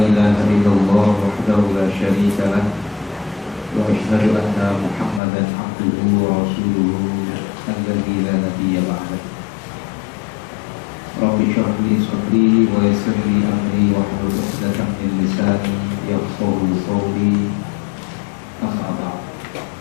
ilaha illallah wahdahu la syarika lah wa asyhadu anna Muhammadan abduhu wa rasuluhu alladzi la nabiyya ba'dahu. Rabbi shrah li sadri wa yassir li amri wahlul 'uqdatam min lisani yafqahu qawli. Amma ba'd.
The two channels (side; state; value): right; drops out; at 5.2 s